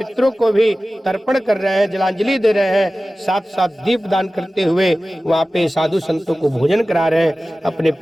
को भी तर्पण कर रहे हैं, जलांजलि दे रहे हैं, साथ साथ दीप दान करते हुए वहाँ पे साधु संतों को भोजन करा रहे हैं अपने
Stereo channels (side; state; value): both; normal; correlation 0.96